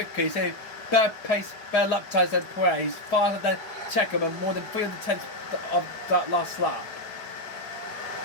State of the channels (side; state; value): right; late; 4.9 ms